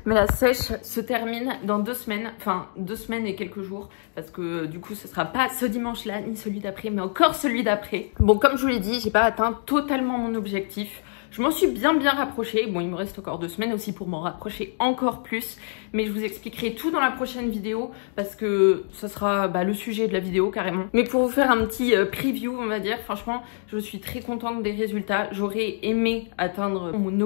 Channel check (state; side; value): silent; right; 62 dB below the other